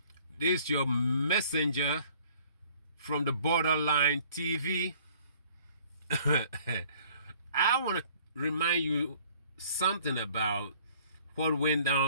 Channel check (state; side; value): inverted; both; correlation -0.56